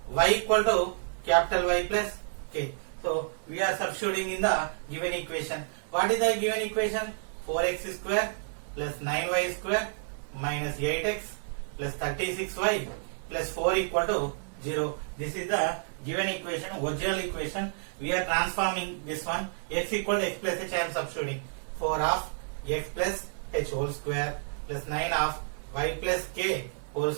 y equal to capital Y plus k. So we are substituting in the given equation. What is the given equation? 4x square plus 9y square minus 8x plus 36y plus 4 equal to 0. This is the given equation, original equation. We are transforming this one. X equal to x plus h, I am substituting. 4 of x plus h whole square plus 9 of y plus k whole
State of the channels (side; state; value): left; silent; 58 dB below the other